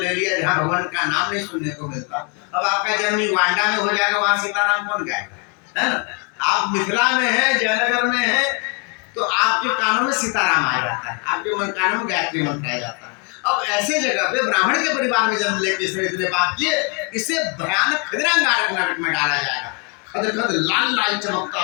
लिया जहाँ भगवान का नाम नहीं सुनने को मिलता। अब आपका जन्म युगांडा में हो जाएगा, वहां सीताराम कौन गाएगा, है ना। आप मिथिला में है, जयनगर में है, तो आपके कानों में सीताराम आ जाता है, आपके कानों में गायत्री मंत्र आ जाता है। अब ऐसे जगह पे ब्राह्मण के परिवार में जन्म लेके इसने इतने पाप किए, इसे भयानक खदिरांगारक नरक में डाला जाएगा। खद खद लाल लाल चमकता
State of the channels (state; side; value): quieter; right; 33.1 dB